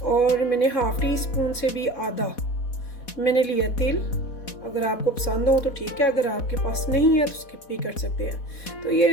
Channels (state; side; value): late; right; 4.1 ms